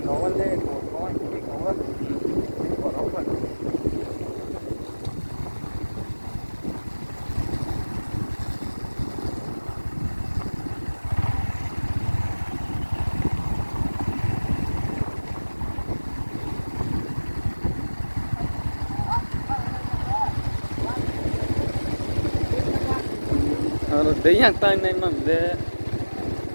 ko le ko ni ko boro ko Đấy yang tay này mà lệ,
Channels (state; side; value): inverted; both; correlation -1.00